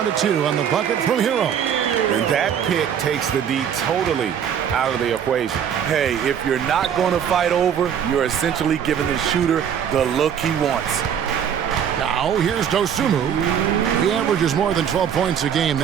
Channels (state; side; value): quieter; left; 8.5 dB